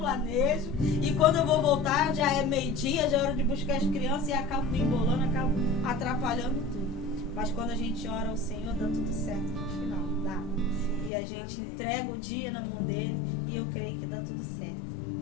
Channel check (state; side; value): drops out; right; at 11.1 s